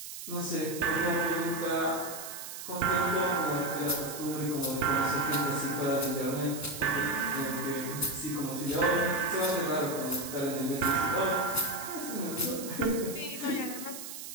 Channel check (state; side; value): noise; right; hiss, 9 dB below the sound